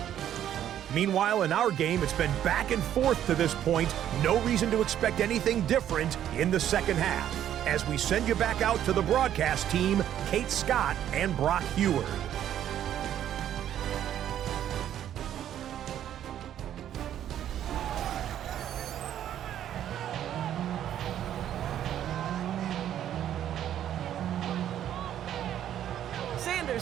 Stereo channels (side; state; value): left; quieter; 10.8 dB